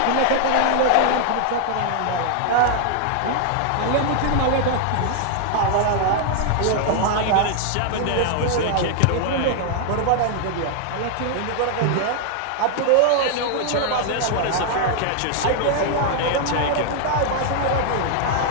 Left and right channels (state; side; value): different; both; correlation 0.00